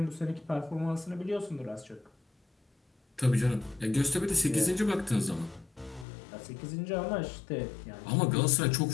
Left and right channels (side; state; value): right; drops out; at 6.1 s